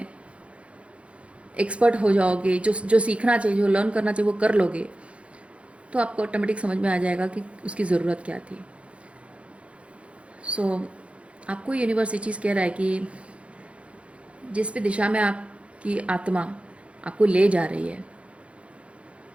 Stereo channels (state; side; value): late; left; 0.061 ms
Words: एक्सपर्ट हो जाओगे, जो सीखना चाहिए, जो लर्न करना चाहिए वो कर लोगे, तो आपको ऑटोमेटिक समझ में आ जाएगा कि उसकी ज़रूरत क्या थी। सो आपको यूनिवर्स ये चीज़ कह रहा है कि जिस भी दिशा में आपकी आत्मा आपको ले जा रही है,